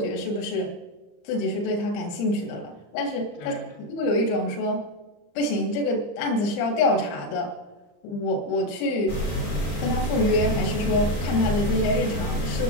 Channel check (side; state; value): right; late; 34 ms